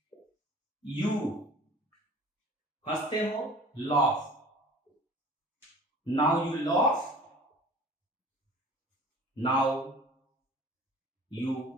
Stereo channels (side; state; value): both; normal; correlation 0.44